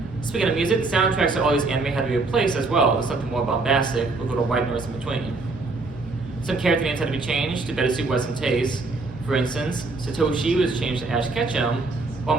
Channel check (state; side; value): quieter; left; 3.5 dB